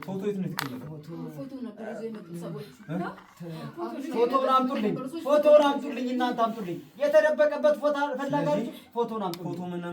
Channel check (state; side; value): identical; both; correlation 1.00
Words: ፎቶ የት ነው የተቀመጠው? ፎቶ ነበር ይዘው የመጡት ሰዎች። ፎቶውን አምጡልኝ። ፎቶውን አምጡልኝ። እናንተ አምጡልኝ። የተደበቀበት ፎቶ ፈላጋችሁ ፎቶውን አምጡልኝ። ፎቶ